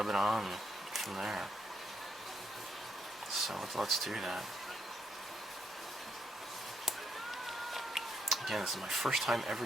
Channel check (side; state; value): both; normal; correlation 0.77